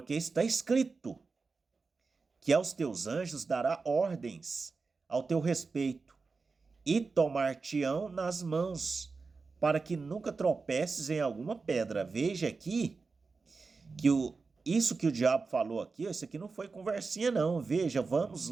está escrito que aos teus anjos dará ordens ao teu respeito e tomar-te-ão nas mãos, para que nunca tropeces em alguma pedra. Veja aqui que isso que o diabo falou aqui, isso aqui não foi conversinha não. Veja, vamos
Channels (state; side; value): quieter; left; 4.4 dB